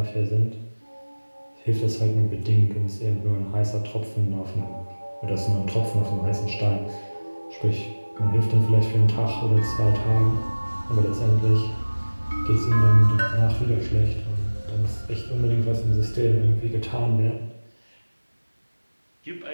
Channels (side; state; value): both; inverted; correlation -1.00